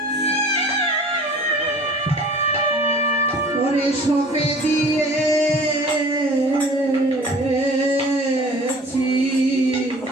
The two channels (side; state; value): both; normal; correlation 0.46